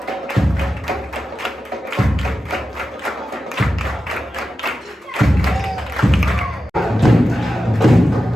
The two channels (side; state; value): both; normal; correlation 0.91